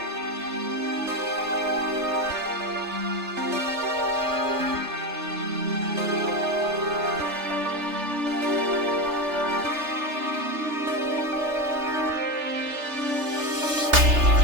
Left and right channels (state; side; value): late; left; 3.3 ms